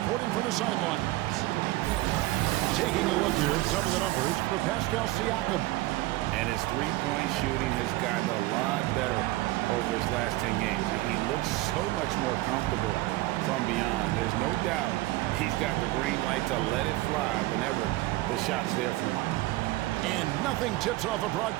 from the sidelines. Taking a look here at some of the numbers for Pascal Siakam. And his three-point shooting has gotten a lot better over his last 10 games. He looks so much more comfortable from beyond. There's no doubt he's got the green light to let it fly whenever the shot's there for him. And nothing tips off a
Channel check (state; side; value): quieter; left; 18.6 dB